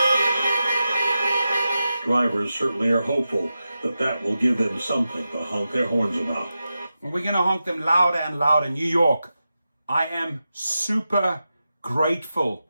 Drivers certainly are hopeful that that will give them something to honk their horns about. We're going to honk them louder and louder. New York, I am super grateful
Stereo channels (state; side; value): inverted; both; correlation -0.91